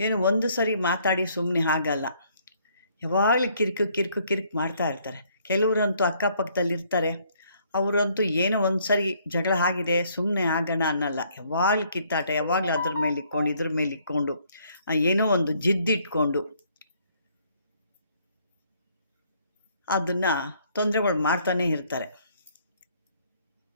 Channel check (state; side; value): inverted; both; correlation -0.66